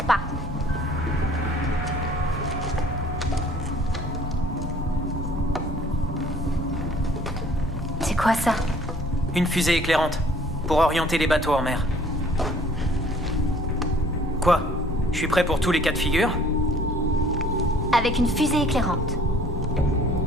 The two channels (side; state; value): both; normal; correlation 0.55